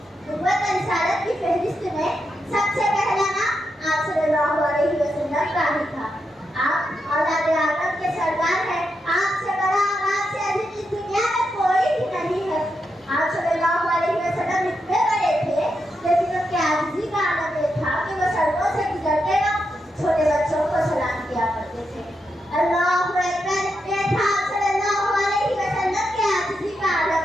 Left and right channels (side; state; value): both; normal; correlation 0.85